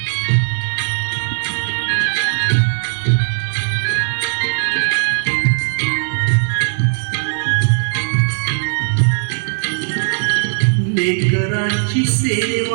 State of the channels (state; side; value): silent; left; 55 dB below the other